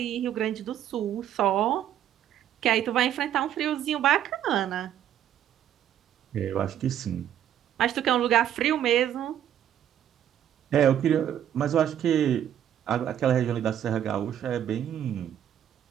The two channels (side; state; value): left; quieter; 10.5 dB